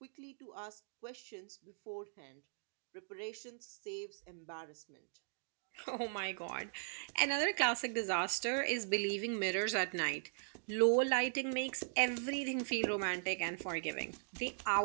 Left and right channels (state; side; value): silent; left; digital silence